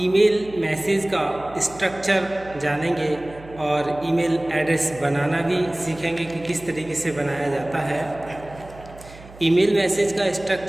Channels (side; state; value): right; noise; hum, 20 dB below the sound